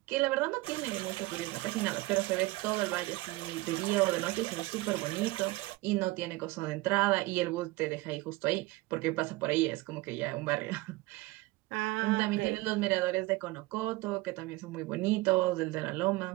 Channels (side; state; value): left; quieter; 20.9 dB